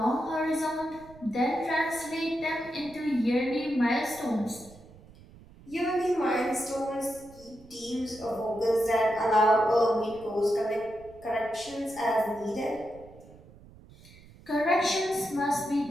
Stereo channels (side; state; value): right; noise; rumble, 22 dB below the sound